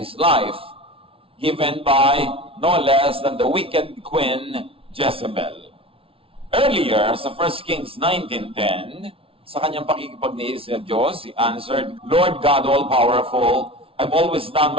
life, given by no less than the wicked queen Jezebel. Earlier, sa 1 Kings 19:10, sa kanyang pakikipagniis sa Diyos, he answered, Lord God all-powerful, I've always done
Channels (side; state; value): left; late; 0.26 ms